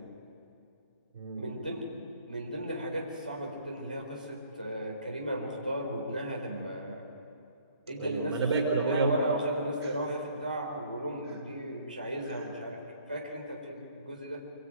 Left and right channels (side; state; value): both; inverted; correlation -0.59